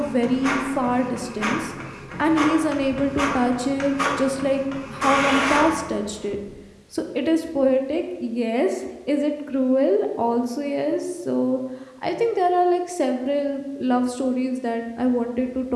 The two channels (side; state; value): both; identical; correlation 1.00